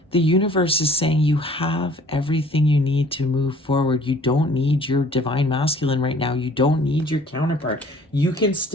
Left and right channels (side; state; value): both; normal; correlation 0.54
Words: the universe is saying you have everything you need to move forward. You don't need your divine masculine right now. You don't need your counterpart. You can